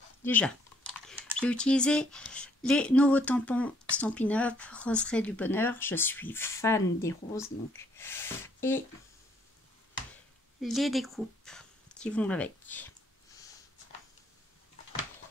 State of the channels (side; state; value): both; normal; correlation 0.66